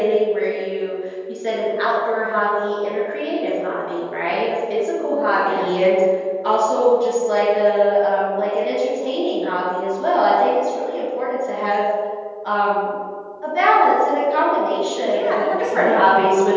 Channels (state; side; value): identical; both; correlation 1.00